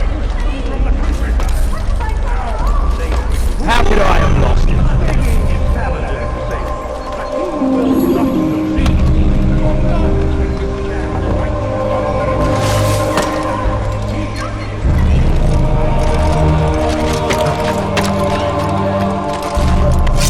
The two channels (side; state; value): both; identical; correlation 1.00